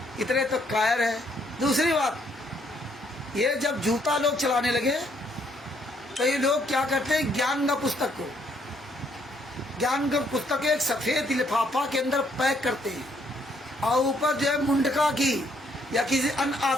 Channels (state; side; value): normal; both; correlation 0.69